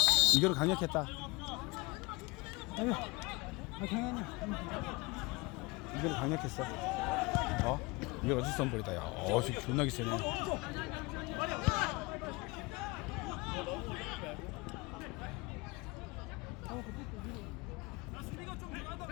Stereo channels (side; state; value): right; quieter; 21.8 dB